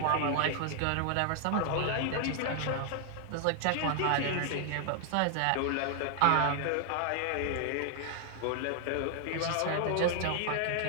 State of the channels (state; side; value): different; both; correlation 0.00